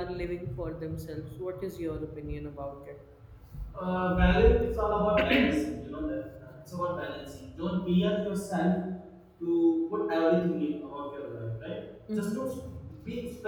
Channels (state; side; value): identical; both; correlation 1.00